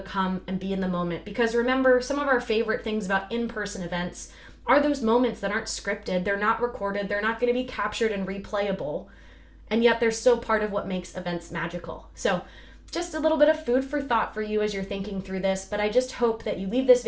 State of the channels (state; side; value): identical; both; correlation 1.00